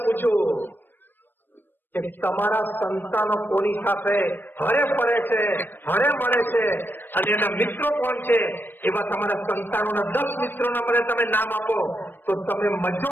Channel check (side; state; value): right; late; 0.095 ms